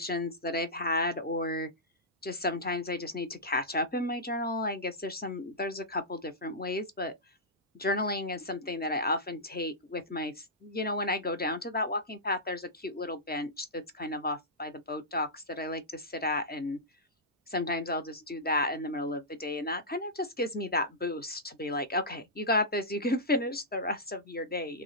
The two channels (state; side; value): normal; both; correlation -0.13